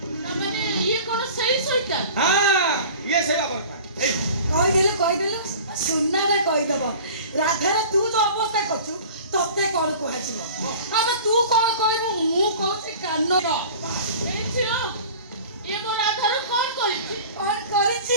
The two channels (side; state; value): both; inverted; correlation -0.42